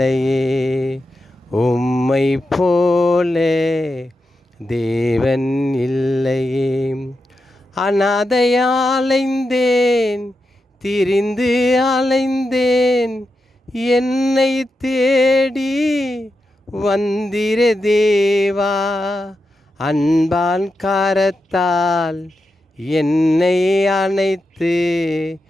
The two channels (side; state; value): both; normal; correlation 0.88